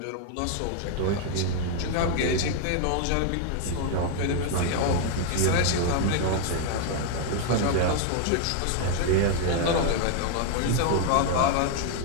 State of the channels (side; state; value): both; different; correlation 0.00